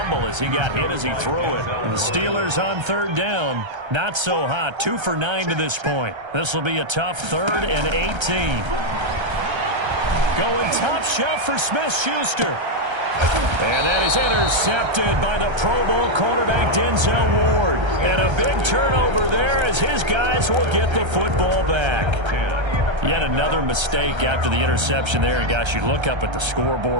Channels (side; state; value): left; late; 1.3 ms